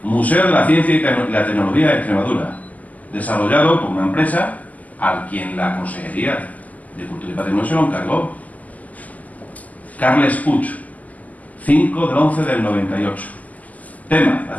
Museo de la Ciencia y la Tecnología de Extremadura, desarrollado por una empresa a quien la Consejería de Cultura y Patrimonio se lo encargó. Carles Puig, 5/11/98. Tema, la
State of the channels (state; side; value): late; right; 0.077 ms